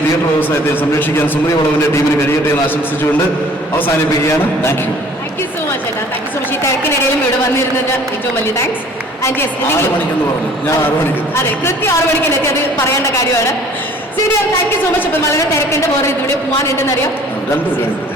തിയേറ്റർ വ്യവസായത്തെയും സംരക്ഷിക്കാൻ സുമതി വളവിന്റെ ടീമിന് കഴിയട്ടെ എന്ന് ആശംസിച്ചുകൊണ്ട് അവസാനിപ്പിക്കുകയാണ്. Thank you. Thank you so much ഏട്ടാ. Thank you so much. ഈ തിരക്കിനിടയിലും ഇവിടെ വന്നിരുന്നത് ഏറ്റവും വലിയ താങ്ക്സ്. ആൻഡ് യെസ്, 6 മണിക്കെന്ന് പറഞ്ഞു, ഞാൻ 6 മണിക്ക്. അതെ, കൃത്യം 6 മണിക്ക് എത്തി, അത് പറയേണ്ട കാര്യമാണ്. ശരി, താങ്ക് യു സോ മച്ച്. അപ്പം വളരെ തിരക്കുണ്ട്, വേറെ ഇതിവിടെ പോകാനുണ്ടെന്നറിയാം.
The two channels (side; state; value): both; normal; correlation 0.52